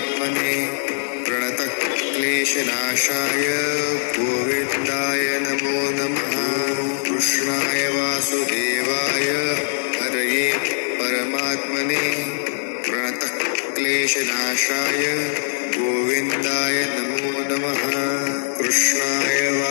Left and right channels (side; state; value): right; silent; digital silence